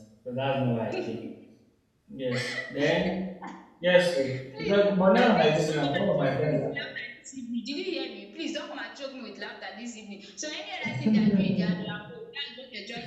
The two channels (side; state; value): both; identical; correlation 1.00